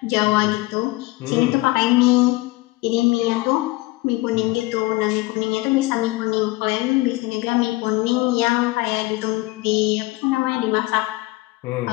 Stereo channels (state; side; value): quieter; right; 20.8 dB